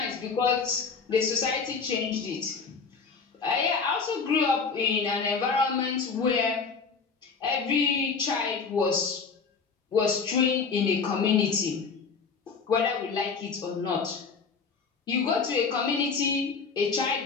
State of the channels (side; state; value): right; quieter; 5.2 dB